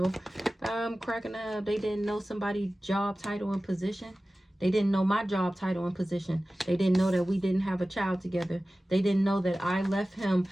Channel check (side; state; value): both; normal; correlation 0.96